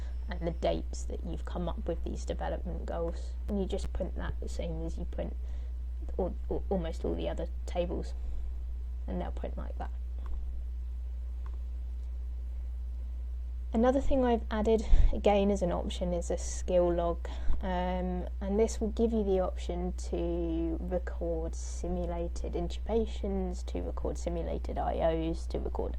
and the dates that you've come up with these development goals. And you just print that the same as you print almost all the other tables, and they'll print like that. Another thing I've added again as an option is a skill log, and this will give you the option to record simulated intubations, to record simulated IOs, to record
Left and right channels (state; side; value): identical; both; correlation 1.00